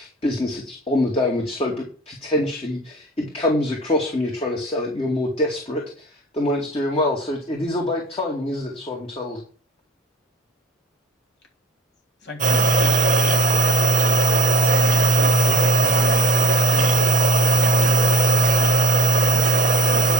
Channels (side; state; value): both; normal; correlation 0.43